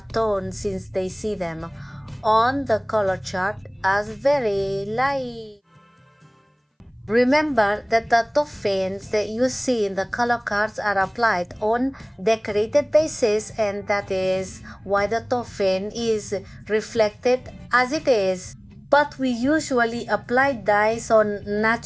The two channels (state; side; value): identical; both; correlation 1.00